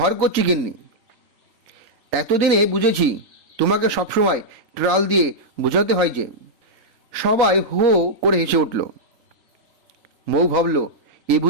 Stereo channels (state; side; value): late; left; 3.9 ms